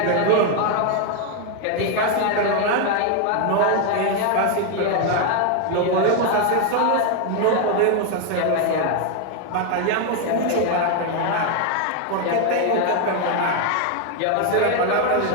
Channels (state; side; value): different; both; correlation 0.01